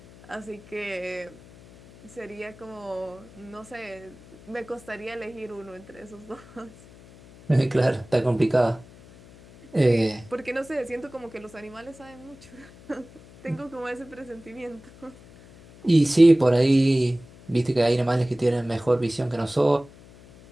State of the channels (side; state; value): left; noise; hum, 22 dB below the sound